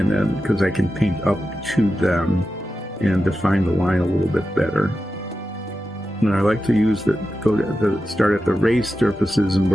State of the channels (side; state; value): both; normal; correlation 0.91